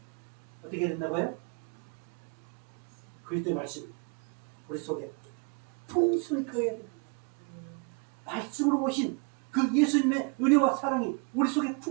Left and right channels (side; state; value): left; quieter; 33.8 dB